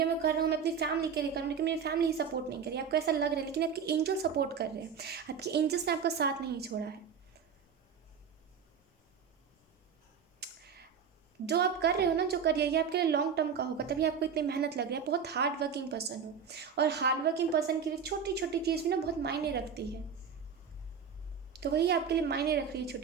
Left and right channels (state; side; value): quieter; left; 6.8 dB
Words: मैं कर रहा हूँ, मैं अपनी फैमिली के लिए कर रहा हूँ, लेकिन मेरी फैमिली ही सपोर्ट नहीं कर रही, आपको ऐसा लग रहा है। लेकिन आपके एंजल सपोर्ट कर रहे हैं, आपके एंजल्स ने आपका साथ नहीं छोड़ा है। जो आप कर रहे हो ना, जो करिए, ये आपके लिए लॉन्ग टर्म का होगा, तभी आपको इतनी मेहनत लग रही है। बहुत हार्ड वर्किंग पर्सन हो, और हार्ड वर्किंग पर्सन के लिए छोटी छोटी चीज़ भी ना बहुत मायने रखती है। तो वही आपके लिए मायने रख रही है,